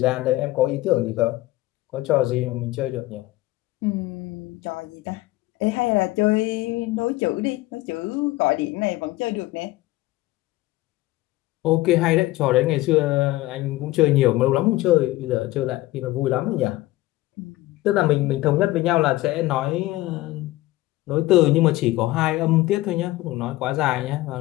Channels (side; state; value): right; quieter; 18.0 dB